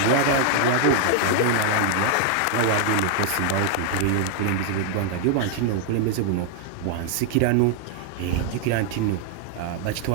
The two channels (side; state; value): both; different; correlation 0.00